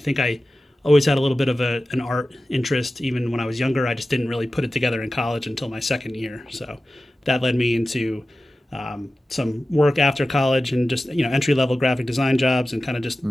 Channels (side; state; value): both; normal; correlation 0.95